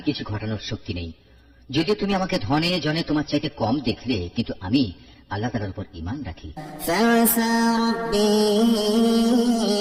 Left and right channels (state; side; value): identical; both; correlation 1.00